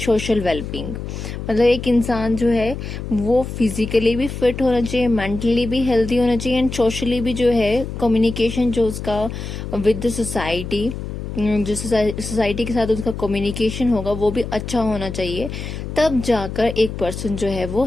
social well-being. मतलब एक इंसान जो है वो फिजिकली भी फिट होना चाहिए, मेंटली भी हेल्दी होना चाहिए एंड सोशली भी जो है कम्युनिकेशन जो उसका विद द सोसाइटी, जो सोसाइटी के साथ उसका कम्युनिकेशन होगा वो भी अच्छा होना चाहिए. तब जाकर एक पर्सन जो है वो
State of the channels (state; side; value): noise; left; hum, 7 dB below the sound